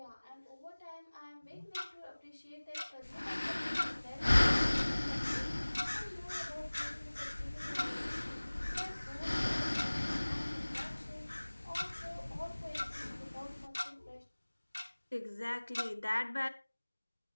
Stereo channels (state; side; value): inverted; both; correlation -1.00